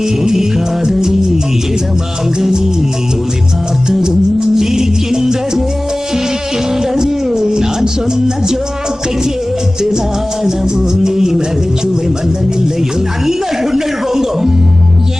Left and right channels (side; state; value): both; normal; correlation 0.98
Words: காதலி இடமாங்கனி உன்னை பார்த்ததும் சிரிக்கின்றதே சிரிக்கின்றதே. நான் சொன்ன ஜோக்கை கேட்டு நாணமும் நீ நகைச்சுவை மன்னனில்லையோ. நல்ல குண்டல் போங்கோ.